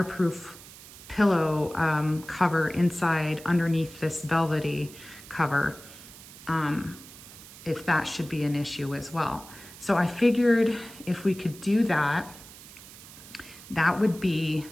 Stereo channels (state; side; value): noise; right; hiss, 18 dB below the sound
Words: pillow cover inside underneath this velvety cover, if that should be an issue as well. So I figured if we could do that, that would be